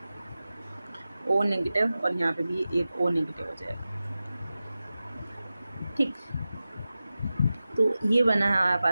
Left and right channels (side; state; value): both; inverted; correlation -0.95